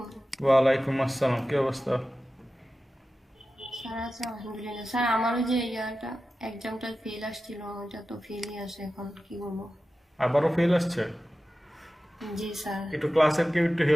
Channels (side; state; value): both; normal; correlation 0.94